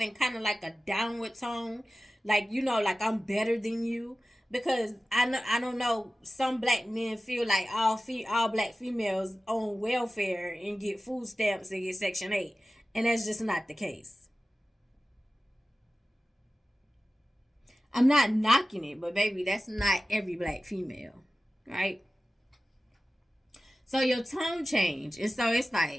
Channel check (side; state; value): both; normal; correlation 0.95